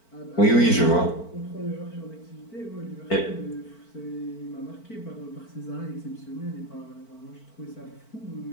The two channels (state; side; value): late; right; 4.5 ms